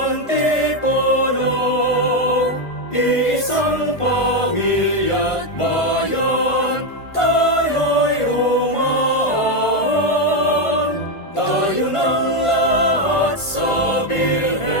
Antipolo, iisang pamilya't bayan, tayo'y humaan. Tayo ng lahat sa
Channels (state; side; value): late; right; 1.5 ms